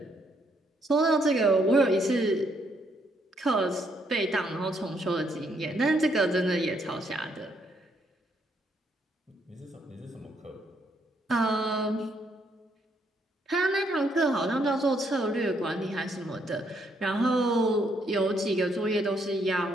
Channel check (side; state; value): both; normal; correlation 0.72